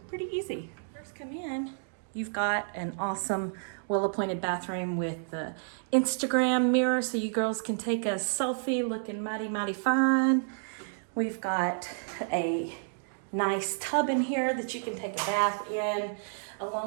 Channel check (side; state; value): left; silent; digital silence